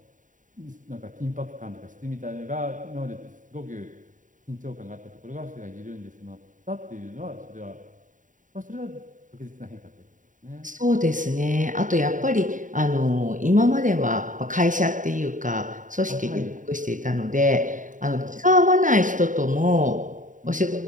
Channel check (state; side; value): late; left; 0.38 ms